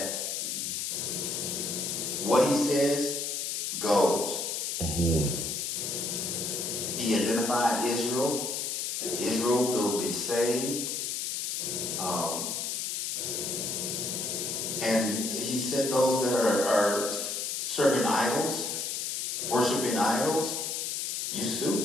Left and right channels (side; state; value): left; noise; hiss, 2 dB below the sound